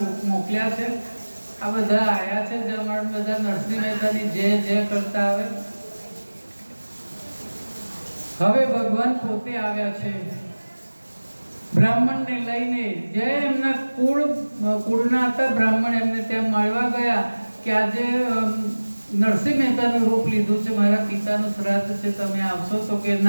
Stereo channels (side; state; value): both; inverted; correlation -1.00